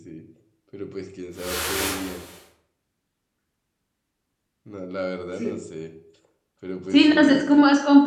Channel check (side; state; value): both; identical; correlation 1.00